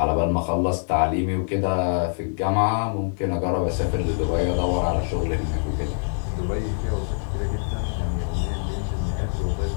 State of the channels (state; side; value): silent; right; digital silence